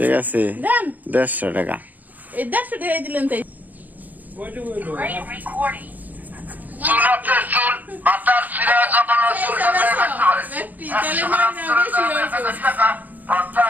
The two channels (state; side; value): late; left; 0.082 ms